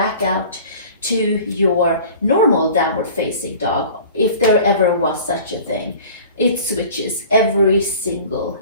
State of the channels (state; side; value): inverted; both; correlation -0.43